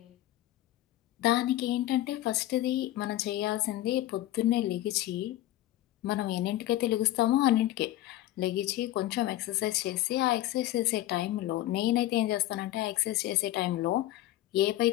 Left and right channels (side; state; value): right; quieter; 14.9 dB